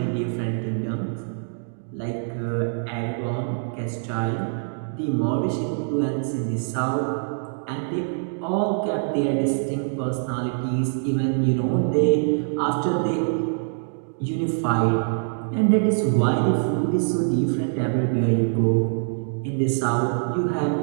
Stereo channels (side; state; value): left; silent; digital silence